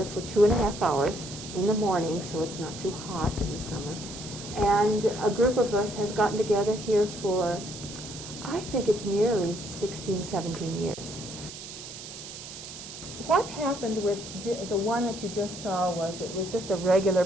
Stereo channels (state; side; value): noise; right; hiss, 12 dB below the sound